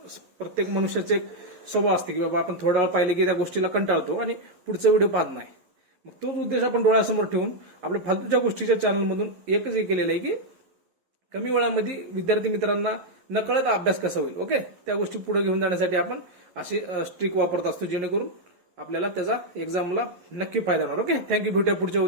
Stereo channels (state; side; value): late; left; 11 ms